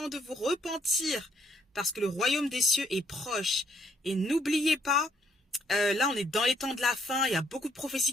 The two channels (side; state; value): both; normal; correlation 0.70